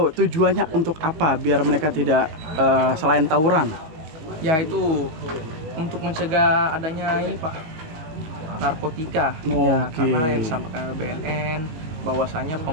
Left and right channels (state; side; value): late; left; 19 ms